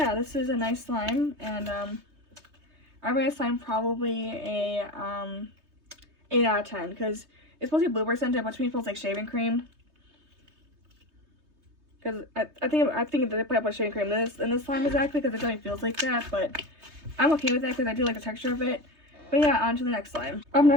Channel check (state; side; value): late; left; 3.2 ms